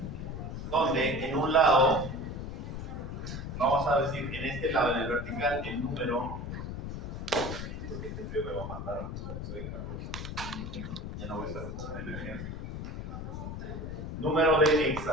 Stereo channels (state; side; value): noise; left; rumble, 6 dB below the sound